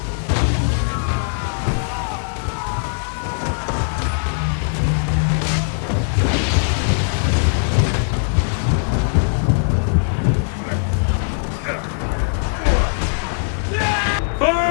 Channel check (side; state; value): right; silent; 66 dB below the other